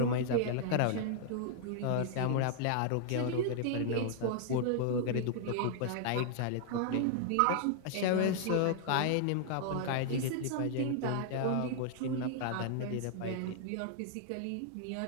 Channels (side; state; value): both; different; correlation 0.00